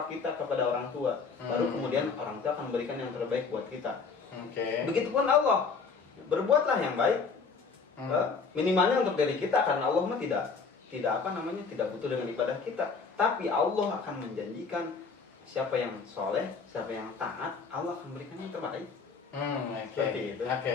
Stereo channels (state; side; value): quieter; right; 5.0 dB